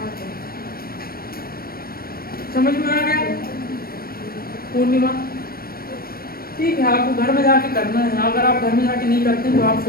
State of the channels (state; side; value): late; right; 0.44 ms